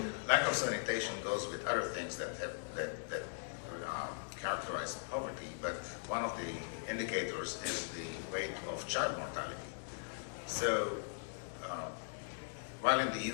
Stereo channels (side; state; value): right; silent; digital silence